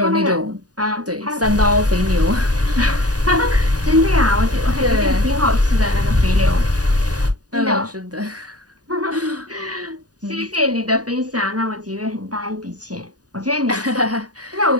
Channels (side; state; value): left; late; 0.68 ms